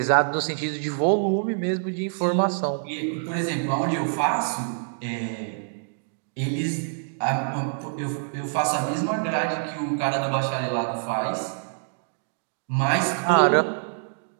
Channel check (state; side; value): silent; left; digital silence